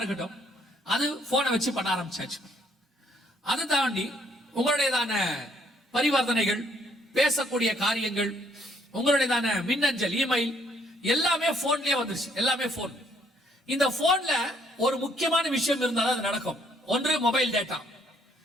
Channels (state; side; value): normal; both; correlation 0.67